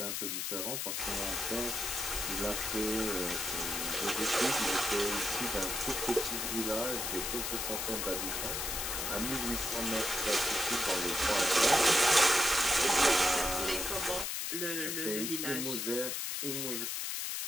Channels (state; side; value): noise; left; hiss, 2 dB below the sound